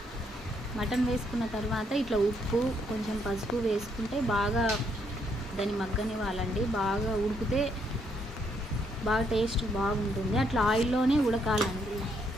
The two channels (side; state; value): both; normal; correlation 0.73